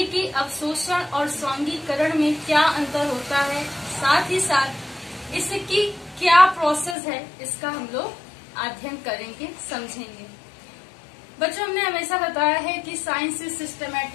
कि अवशोषण और स्वांगीकरण में क्या अंतर होता है, साथ ही साथ इसकी क्या प्रोसेस है, इसका हम लोग अध्ययन करेंगे, समझेंगे। बच्चों, हमने हमेशा बताया है कि science is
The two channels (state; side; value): drops out; right; at 7.0 s